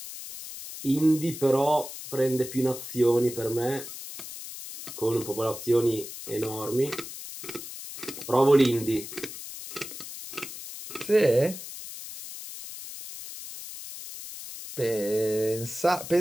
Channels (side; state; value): left; noise; hiss, 11 dB below the sound